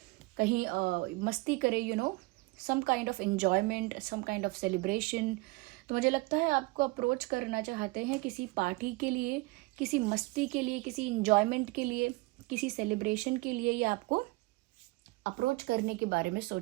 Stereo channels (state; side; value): quieter; left; 23.6 dB